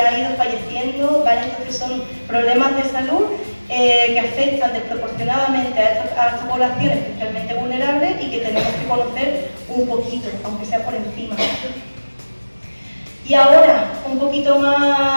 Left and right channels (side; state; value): both; inverted; correlation -1.00